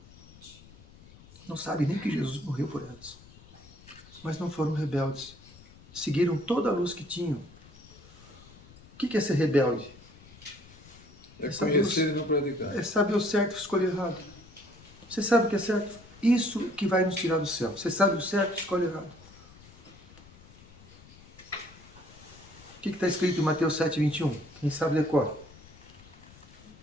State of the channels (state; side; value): noise; left; rumble, 22 dB below the sound